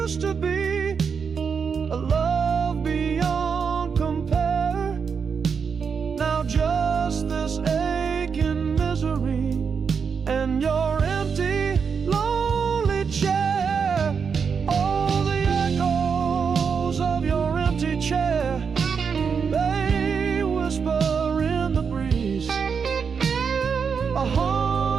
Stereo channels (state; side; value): quieter; left; 6.1 dB